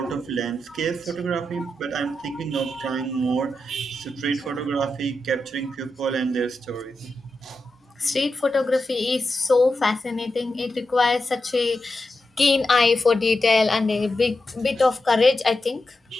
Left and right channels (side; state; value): both; normal; correlation 0.89